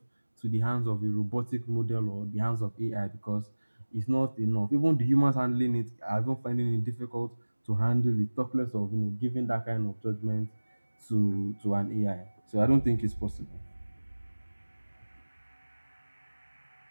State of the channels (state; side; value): inverted; both; correlation -1.00